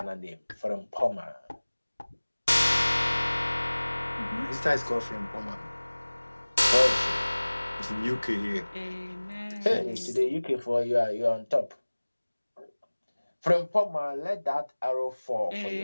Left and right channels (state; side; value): inverted; both; correlation -1.00